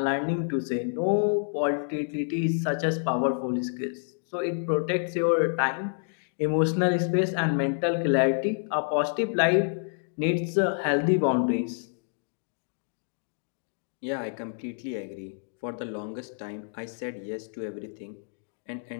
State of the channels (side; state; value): right; silent; digital silence